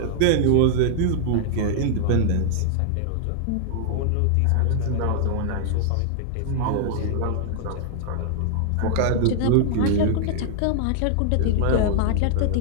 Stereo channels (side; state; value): both; different; correlation -0.01